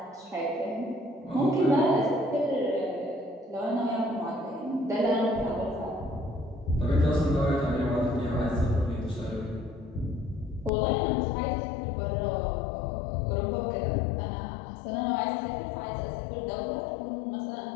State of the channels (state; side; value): drops out; right; at 10.7 s